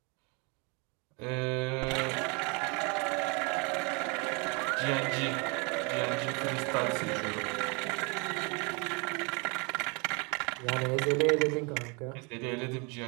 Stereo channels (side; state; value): left; quieter; 31.2 dB